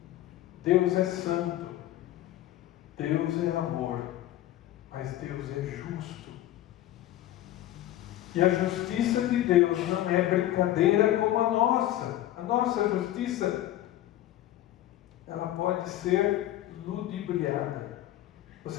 Deus é santo, Deus é amor, mas Deus é justo. E a justiça de Deus não é brincadeira como a nossa. A nossa justiça, ela pode ser ludibriada.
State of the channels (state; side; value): quieter; right; 13.7 dB